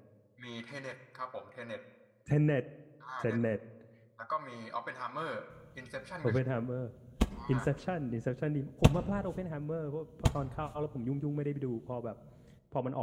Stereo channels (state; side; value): identical; both; correlation 1.00